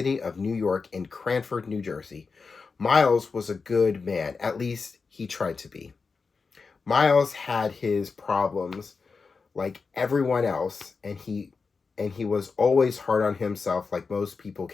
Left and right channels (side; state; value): right; quieter; 4.7 dB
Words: of New York in Cranford, New Jersey. Miles was a good man, at least he tried to be. Miles had his problems like everyone else, and he was always hard on himself like most people